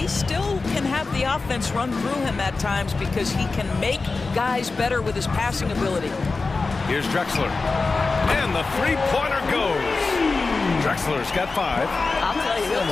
still can have the offense run through him at times because he can make guys better with his passing ability. Here's Drexler. And the 3-pointer goes. Drexler's got 5. I'll tell you, he'll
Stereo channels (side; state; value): right; quieter; 3.9 dB